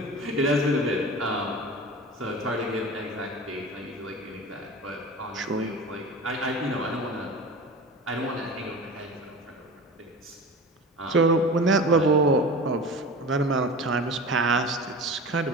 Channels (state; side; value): normal; both; correlation 0.34